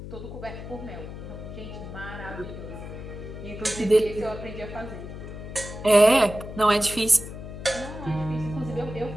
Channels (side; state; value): left; noise; hum, 10 dB below the sound